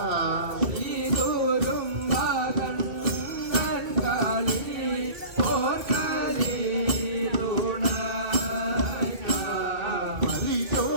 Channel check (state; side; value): late; left; 2.2 ms